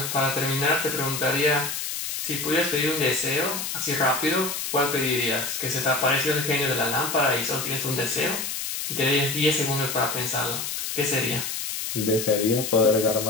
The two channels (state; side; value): noise; left; hiss, 4 dB below the sound